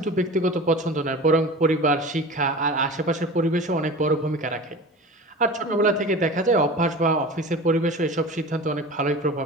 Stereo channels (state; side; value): normal; both; correlation 0.35